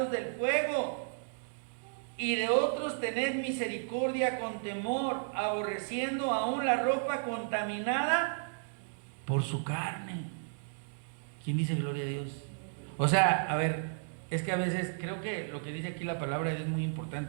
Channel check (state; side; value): silent; left; digital silence